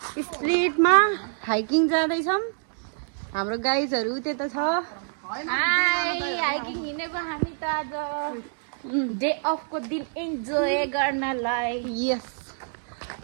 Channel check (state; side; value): silent; left; digital silence